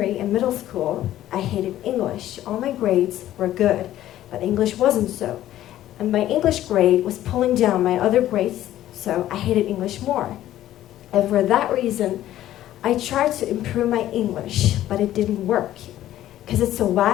and middle school, I hated English. All my grades were good, but English wasn't so. And my English grade was pulling down my other grades, so I hated English more. And for that reason, I tried to improve my English, but it didn't work. Because it's a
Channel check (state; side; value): quieter; right; 13.2 dB